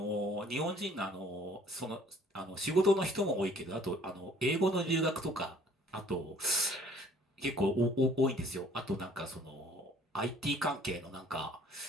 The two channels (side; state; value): both; normal; correlation 0.56